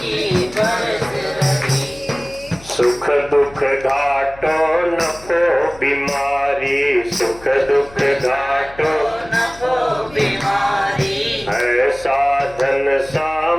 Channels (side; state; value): left; noise; hum, 21 dB below the sound